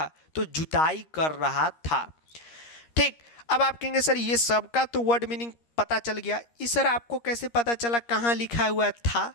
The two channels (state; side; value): late; right; 13 ms